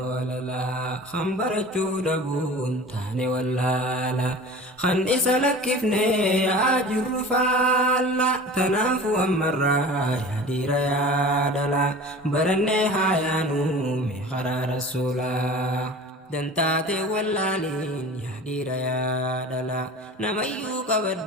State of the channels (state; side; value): normal; both; correlation 0.38